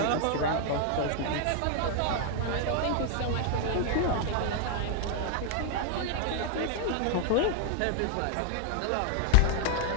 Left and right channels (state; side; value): different; both; correlation 0.00